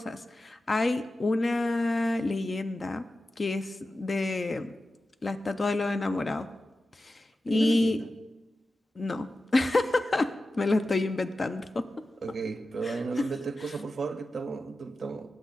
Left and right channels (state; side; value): normal; both; correlation 0.93